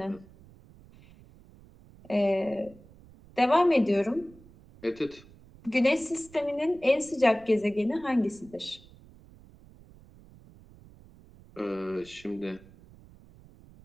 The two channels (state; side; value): noise; right; rumble, 23 dB below the sound